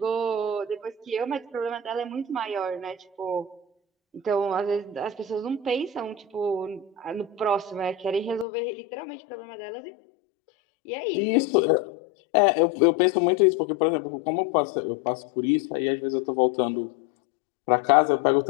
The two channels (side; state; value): right; drops out; at 8.5 s